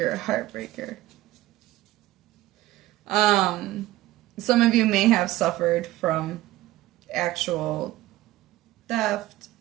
a heartbreaker. Some of you may have suffered from actual theft.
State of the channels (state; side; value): quieter; left; 16.2 dB